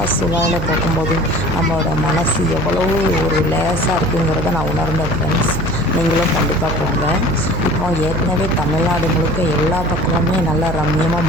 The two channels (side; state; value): right; noise; hum, 5 dB below the sound